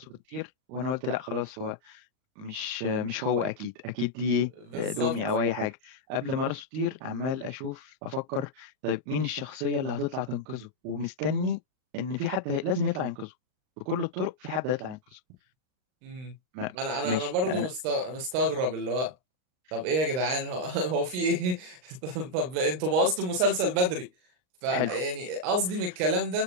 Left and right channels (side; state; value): left; late; 39 ms